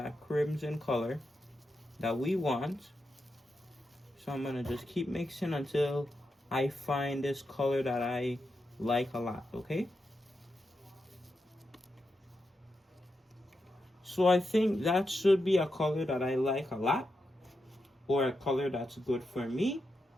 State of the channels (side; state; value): both; normal; correlation 0.87